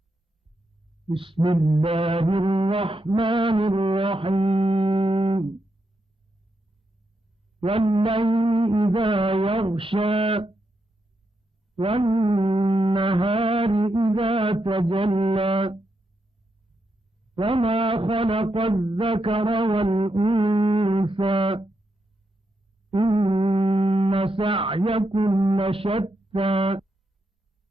बिस्मिल्लाहिर्रहमानिर्रहीम। वल्लैलि इज़ा यग़शा वन्नहारि इज़ा तजल्ला वमा खलक़ज़-ज़करा वल-उन्सा इन्न सअयकुम लशत्ता।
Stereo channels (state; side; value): normal; both; correlation 0.83